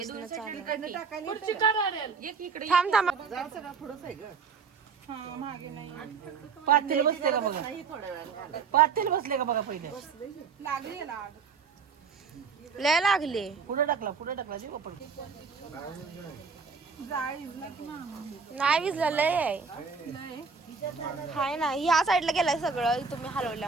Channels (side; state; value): left; quieter; 5.3 dB